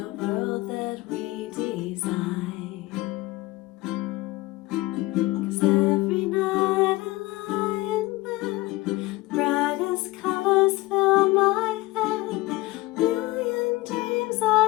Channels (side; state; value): right; quieter; 20.2 dB